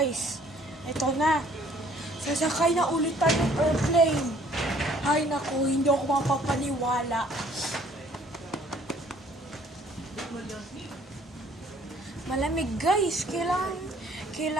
Ito na. Sasakay na ulit tayo ng airplane. Ay naku, hindi ako mapapaniwala. Malamig guys,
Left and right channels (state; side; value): normal; both; correlation 0.59